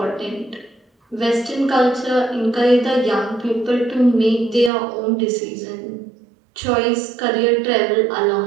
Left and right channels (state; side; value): drops out; left; at 4.7 s